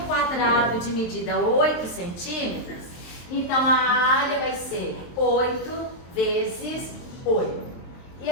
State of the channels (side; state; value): right; late; 23 ms